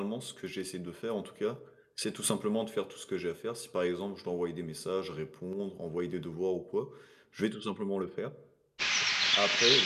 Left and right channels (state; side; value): identical; both; correlation 1.00